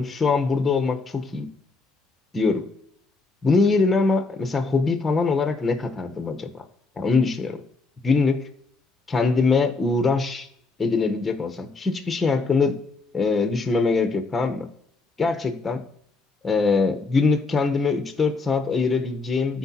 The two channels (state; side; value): quieter; right; 3.8 dB